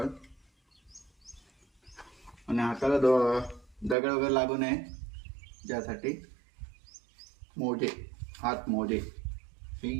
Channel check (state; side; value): drops out; left; at 4.0 s